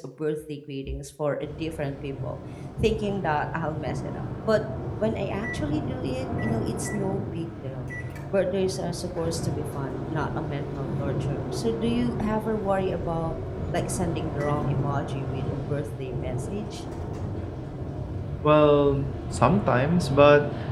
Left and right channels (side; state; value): both; identical; correlation 1.00